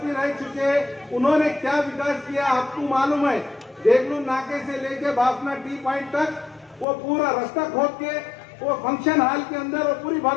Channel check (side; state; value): right; drops out; at 6.9 s